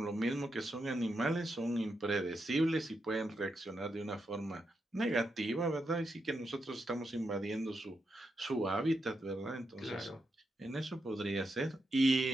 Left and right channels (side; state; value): both; normal; correlation 0.84